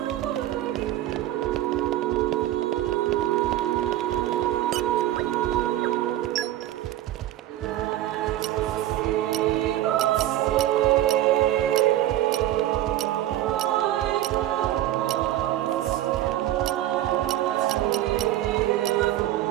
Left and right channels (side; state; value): left; quieter; 13.7 dB